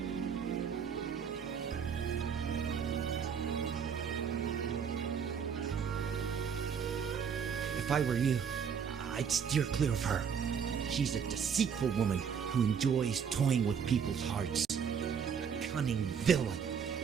If I were you, I'd steer clear of her. She's a deceitful woman who enjoys toying with people's hearts. A cunning villain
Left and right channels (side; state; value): left; quieter; 7.0 dB